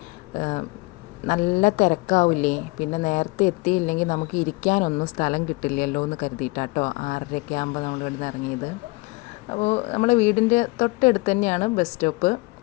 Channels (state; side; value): quieter; right; 25.3 dB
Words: നല്ല തിരക്കാവില്ലേ, പിന്നെ നേരത്തെ എത്തിയില്ലെങ്കിൽ നമുക്ക് ഇരിക്കാനൊന്നും സ്ഥലം കിട്ടില്ലല്ലോ എന്ന് കരുതിയിട്ടാട്ടോ 6:30 ആകുമ്പോൾ നമ്മൾ ഇവിടുന്ന് ഇറങ്ങിയത്. അപ്പോൾ നമ്മുടെ വീടിൻ്റെ തൊട്ടടുത്ത് തന്നെയാണ് ബസ് സ്റ്റോപ്പ്.